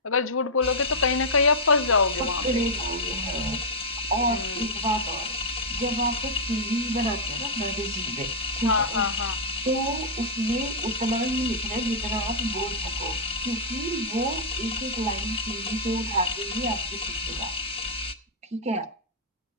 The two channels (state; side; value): normal; both; correlation -0.08